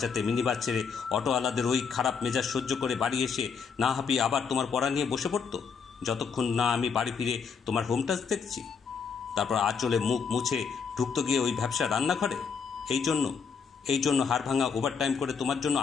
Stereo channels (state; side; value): quieter; right; 6.1 dB